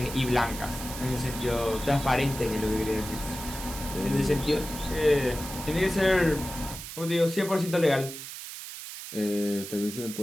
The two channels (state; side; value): noise; right; hiss, 10 dB below the sound